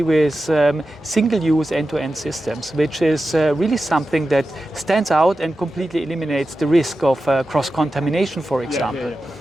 with single-use end-to-end systems, which is really something that stands out and completely eliminates the risk of cross-contamination, for example.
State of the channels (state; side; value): normal; both; correlation 0.92